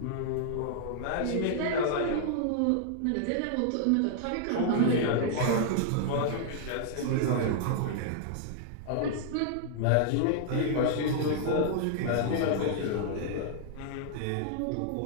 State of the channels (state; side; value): different; both; correlation -0.01